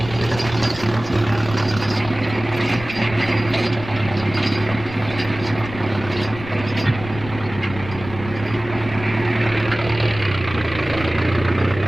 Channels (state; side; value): noise; left; rumble, 13 dB below the sound